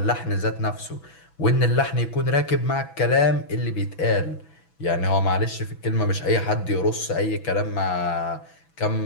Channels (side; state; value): right; late; 6.1 ms